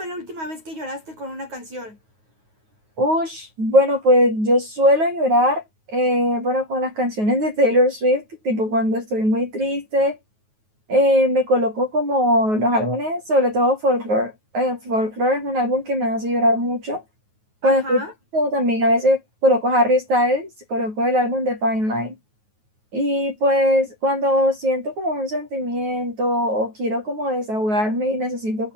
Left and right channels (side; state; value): left; late; 9.4 ms